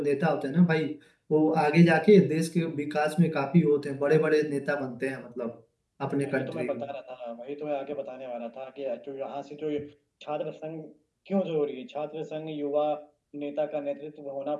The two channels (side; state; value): both; identical; correlation 1.00